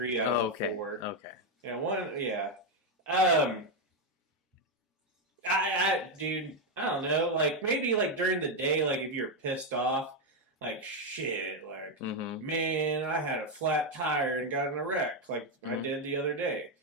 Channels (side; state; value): both; normal; correlation 0.05